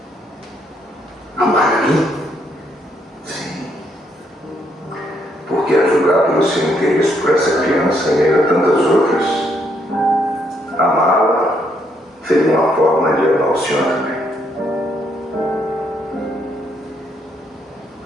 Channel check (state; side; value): normal; both; correlation 0.73